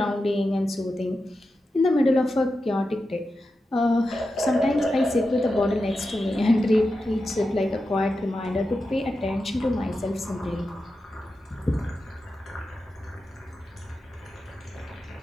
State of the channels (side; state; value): both; normal; correlation 0.90